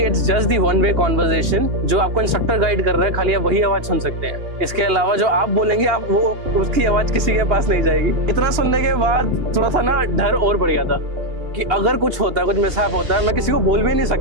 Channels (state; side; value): late; left; 2.9 ms